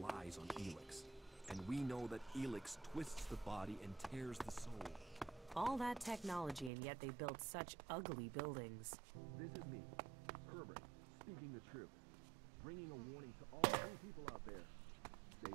On ELEX, and we know that ELEX twists the body and tears the soul. All that technology, and yet they built such ugly buildings. This is me, Herbert, speaking the truth, bringing a warning to all you people out there.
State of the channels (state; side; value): drops out; left; at 6.7 s